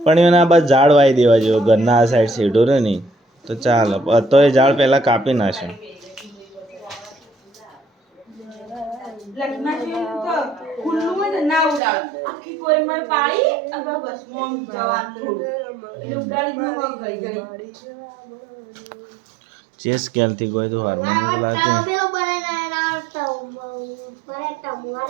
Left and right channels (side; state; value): left; drops out; at 11.8 s